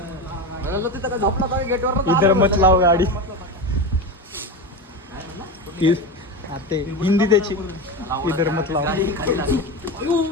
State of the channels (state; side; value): normal; both; correlation 0.20